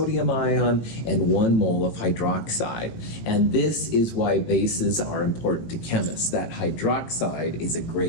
ion and 1 mole of hydroxide. And this is why bases are important to chemists. That hydroxide is a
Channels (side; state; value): right; late; 18 ms